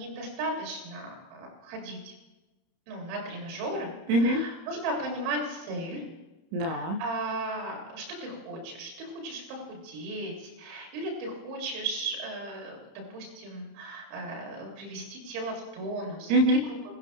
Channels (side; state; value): left; late; 30 ms